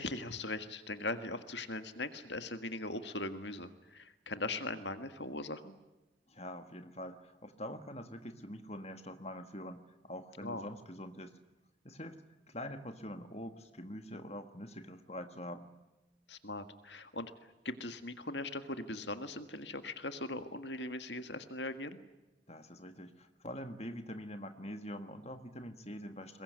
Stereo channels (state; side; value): normal; both; correlation 0.19